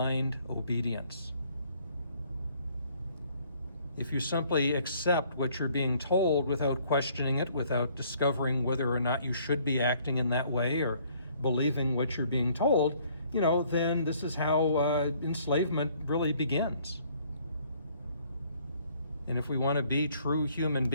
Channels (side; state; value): both; inverted; correlation -0.62